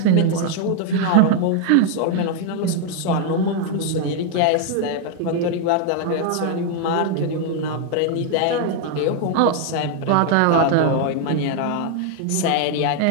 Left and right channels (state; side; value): different; both; correlation 0.00